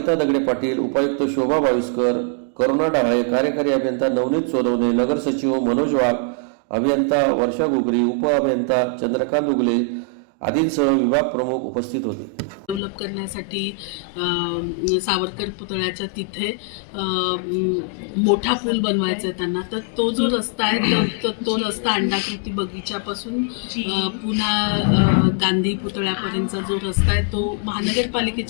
दगडे पाटील, उपायुक्त शोभा बाविस्कर, करुणा डाळे, कार्यकारी अभियंता नवनीत सोनवणे, नगर सचिव मनोज वाघ, अभियंता वर्षा घुगरी, उप अभियंता चंद्रकांत उगले आदींसह विभाग प्रमुख उपस्थित होते। डेव्हलप करण्यासाठी सावरकर पुतळ्याच्या तिथे मोठा पूल बनवायचा आहे त्यांना। तर तो जो रस्ता आहे तो रस्ता अंडाकृती बगीच्यापासून पुन्हा गांधी पुतळ्यापर्यंतचा जो रस्ता आहे तो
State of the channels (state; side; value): drops out; right; at 12.8 s